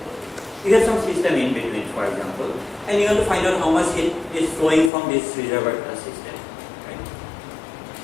you have some system in between, for example, and you want to find out how much heat is flowing from this reservoir to the system, right?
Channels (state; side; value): drops out; right; at 4.9 s